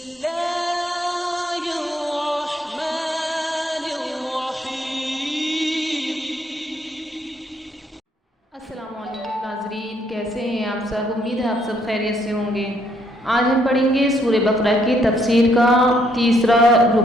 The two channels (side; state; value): both; normal; correlation 0.70